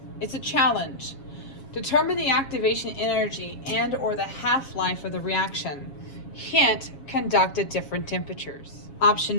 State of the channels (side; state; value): right; late; 7.3 ms